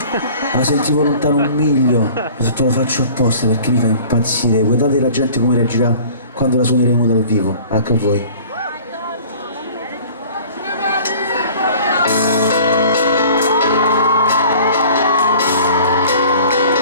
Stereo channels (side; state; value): both; inverted; correlation -0.47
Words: La sentivo lontano un miglio. Ho detto lo faccio apposta perché mi fa impazzire. Guardate la gente come reagirà quando la suoneremo dal vivo. Anche a voi.